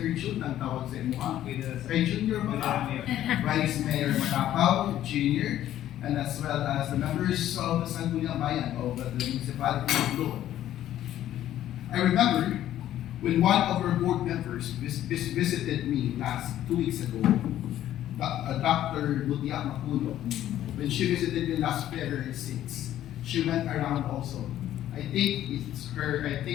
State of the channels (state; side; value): quieter; right; 12.4 dB